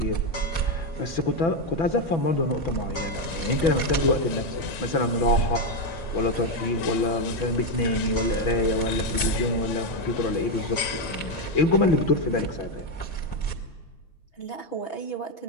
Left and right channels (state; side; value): late; right; 6.0 ms